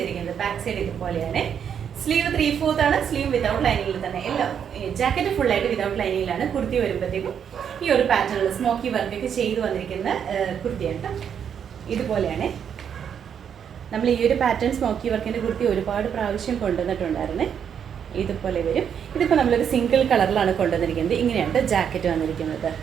ബാക്ക് സൈഡ് ഇതുപോലെയാണ്. സ്ലീവ് 3/4 ആണ്. സ്ലീവ് വിതൗട്ട് ലൈനിങ്ങിൽ തന്നെ. എല്ലാം ജാക്കറ്റ് ഫുള്ളായിട്ട് വിതൗട്ട് ലൈനിങ്ങിലാണ്. കുർത്തി വരുമ്പോഴത്തേക്കും ഈ ഒരു പാറ്റേണിൽ സ്മോക്കി വർക്കൊക്കെ ചെയ്ത് വന്നിരിക്കുന്ന കുർത്തിയാണ് കേട്ടോ. ഇതുപോലെയാണ്. നമ്മൾ ഈ ഒരു പാറ്റേൺ സ്മോക്കി വർക്കിൻ്റെ കുർത്തി ഒരുപാട് പ്രാവശ്യം കൊണ്ടുവന്നിട്ടുണ്ടായിരുന്നേ. ഇതുപോലെ വരും. ഇതിപ്പോൾ നമ്മളൊരു സിംഗിൾ കളറിലാണ് കൊണ്ടുവന്നിരിക്കുന്നത്. ഇങ്ങനെയാണ് ജാക്കറ്റ് വന്നിരിക്കുന്നത്.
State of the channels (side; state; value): left; quieter; 8.1 dB